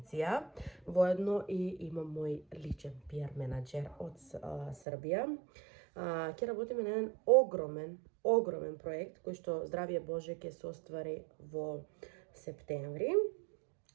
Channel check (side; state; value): left; drops out; at 4.8 s